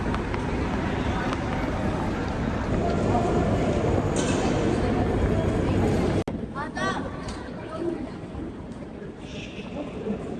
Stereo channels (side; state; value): both; identical; correlation 1.00